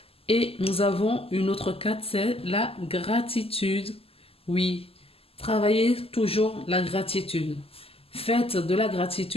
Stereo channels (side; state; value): right; late; 0.28 ms